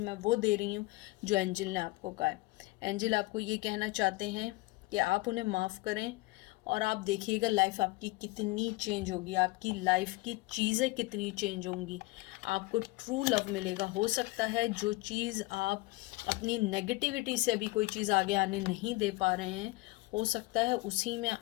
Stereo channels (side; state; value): right; quieter; 22.3 dB